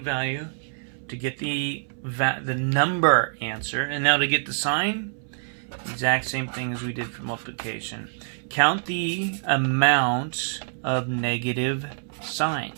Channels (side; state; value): left; silent; 61 dB below the other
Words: to get the number answer. And now to get the sign, exact same thing as we did for multiplication. Count the amount of negative